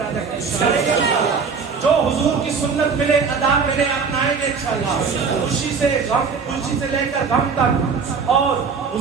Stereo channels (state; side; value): quieter; left; 5.4 dB